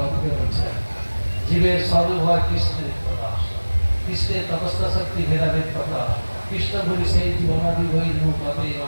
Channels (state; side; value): inverted; both; correlation -1.00